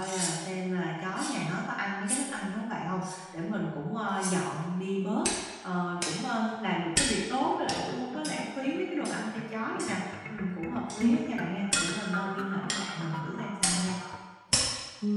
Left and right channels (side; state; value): both; identical; correlation 1.00